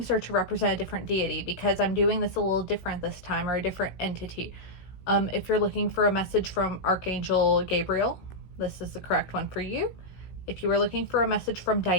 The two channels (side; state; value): right; late; 16 ms